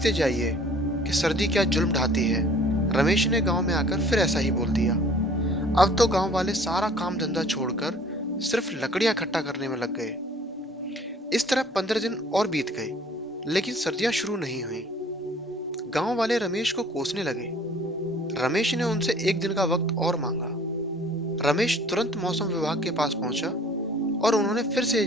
जाइए कि सर्दी क्या जुल्म ढाती है। रमेश ने गांव में आकर फिर ऐसा ही बोल दिया। अब तो गांव वाले सारा काम धंधा छोड़कर सिर्फ लकड़ियां इकट्ठा करने में लग गए। इस तरह 15 दिन और बीत गए, लेकिन सर्दियां शुरू नहीं हुई। गांव वाले रमेश को कोसने लगे। रमेश ने उनसे एक दिन का वक्त और मांगा। रमेश तुरंत मौसम विभाग के पास पहुंचा और उन्होंने फिर से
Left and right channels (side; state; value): both; normal; correlation 0.52